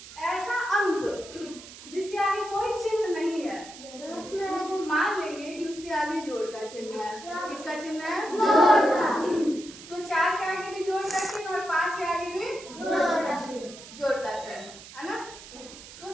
ऐसा अंक जिसके आगे कोई चिन्ह नहीं है उसको मान लेंगे कि उसके आगे जोड़ का चिन्ह है। किसका चिन्ह है? जोड़ का। तो 4 के आगे भी जोड़ का चिन्ह और 5 के आगे भी जोड़ का चिन्ह है ना। तो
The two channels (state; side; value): noise; right; hiss, 16 dB below the sound